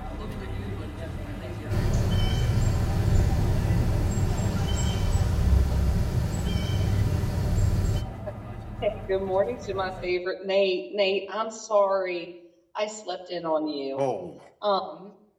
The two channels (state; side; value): identical; both; correlation 1.00